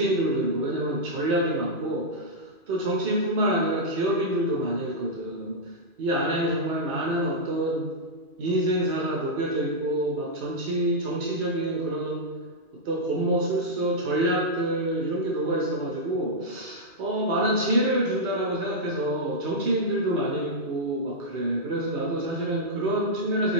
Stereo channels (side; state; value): left; late; 2.4 ms